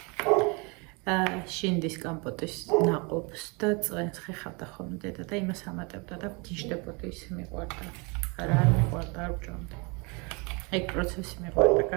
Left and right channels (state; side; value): quieter; left; 30.3 dB